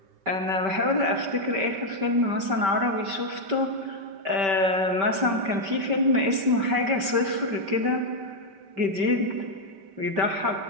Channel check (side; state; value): left; late; 5.1 ms